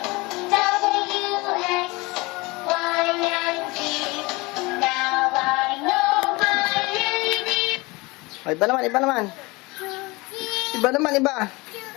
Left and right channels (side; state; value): right; quieter; 24.1 dB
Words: Oh, iba naman, iba naman. Iba naman, iba.